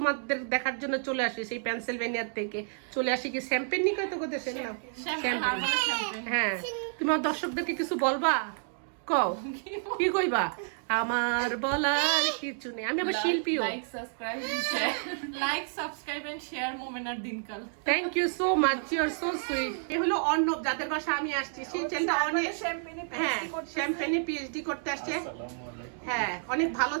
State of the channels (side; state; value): left; silent; digital silence